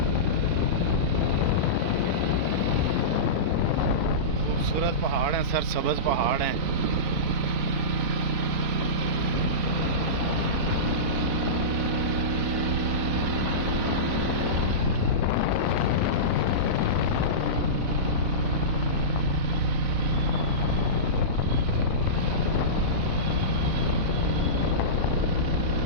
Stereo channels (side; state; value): left; late; 4.0 ms